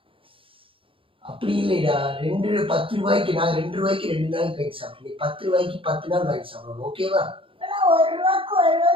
அப்படி இல்லைடா, 10 ரூபாய்க்கு நான் 2 ரூபாய்க்கு 2 நாளைக்கு வாங்கி சாப்பிடுவேன். 10 ரூபாய்க்கு 10 நாள் வாங்கி சாப்பிடுவோம். ஓகேவா? இப்பெல்லாம் 1 ரூபாய்க்கு 1 ரூபா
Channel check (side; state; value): left; late; 0.26 ms